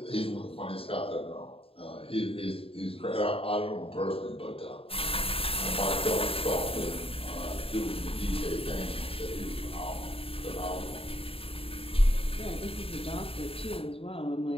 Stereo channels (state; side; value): late; right; 0.27 ms